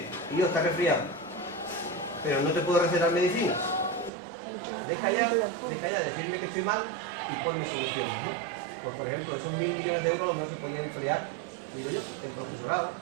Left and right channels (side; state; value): left; drops out; at 4.1 s